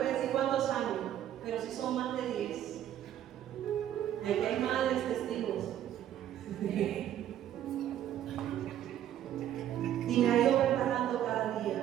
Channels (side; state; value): left; quieter; 11.3 dB